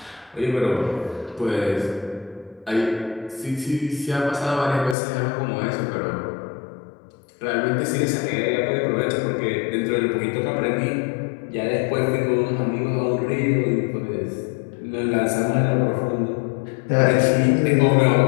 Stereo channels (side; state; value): right; drops out; at 5.0 s